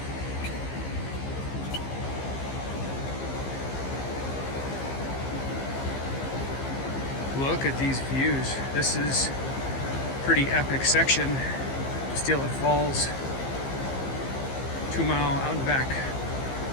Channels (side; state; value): right; late; 15 ms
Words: Look at these views. This is a pretty epic section. Steelhead Falls 2-mile out and back